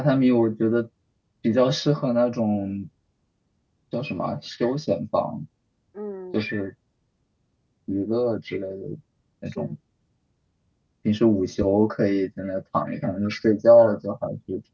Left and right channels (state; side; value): identical; both; correlation 1.00